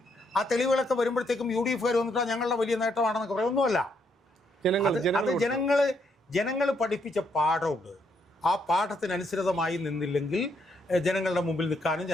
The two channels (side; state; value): both; normal; correlation 0.75